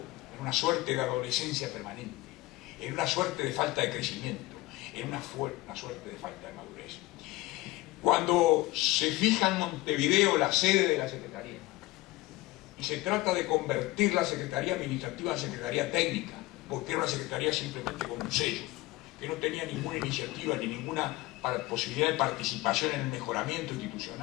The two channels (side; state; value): right; quieter; 19.2 dB